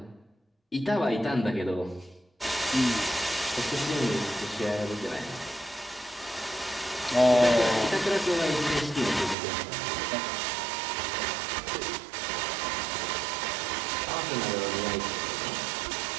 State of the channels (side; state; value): left; drops out; at 9.3 s